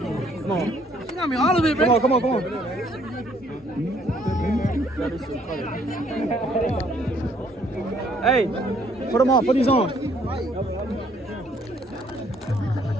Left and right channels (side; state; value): both; normal; correlation 0.64